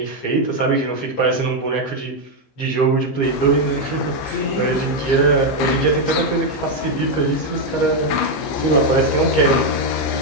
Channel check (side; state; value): right; late; 15 ms